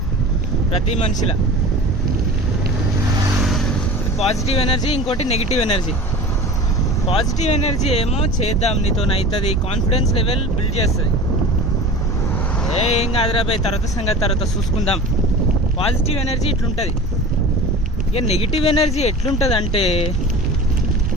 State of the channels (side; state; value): both; normal; correlation 0.37